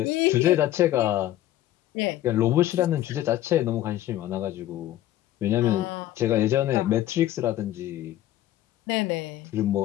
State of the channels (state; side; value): quieter; right; 13.7 dB